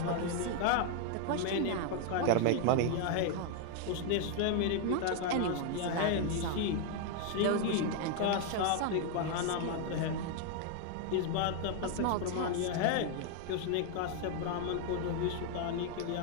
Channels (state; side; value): different; both; correlation 0.00